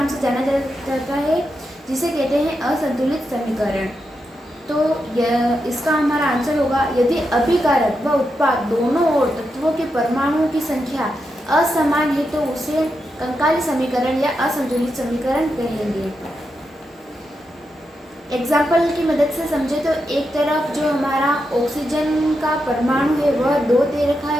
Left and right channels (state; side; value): normal; both; correlation 0.86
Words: से जाना जाता है जिसे कहते हैं असंतुलित समीकरण। तो इसका हमारा आंसर होगा यदि अभिकारक व उत्पाद दोनों ओर तत्वों के परमाणुओं की संख्या असमान है तो उसे कंकाली समीकरण या असंतुलित समीकरण कहेंगे। एग्जाम्पल की मदद से समझे तो एक तरफ जो हमारा ऑक्सीजन का परमाणु है वह 2 दे रखा